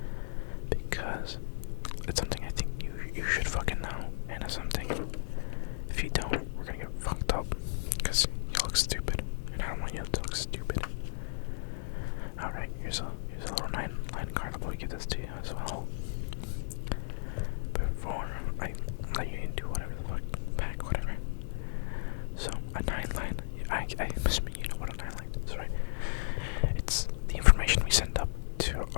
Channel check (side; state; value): right; silent; digital silence